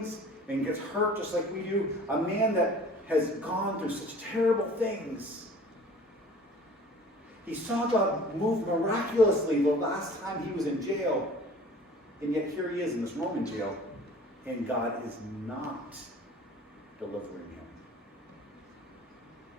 and gets hurt just like we do, a man that has gone through such terrible things. He saw God move miraculously the last time he was in jail, and yet here he is in this Roman jail, and God is not delivering him.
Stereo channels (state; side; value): normal; both; correlation 0.47